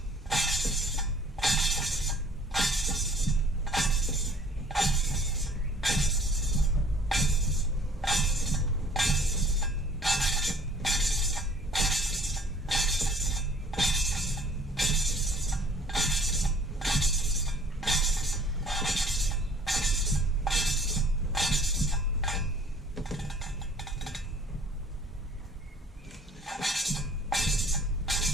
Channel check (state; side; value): normal; both; correlation 0.54